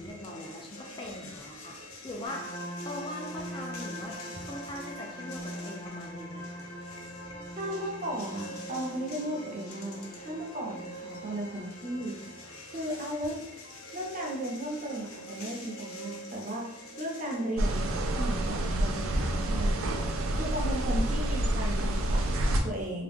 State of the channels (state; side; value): normal; both; correlation 0.64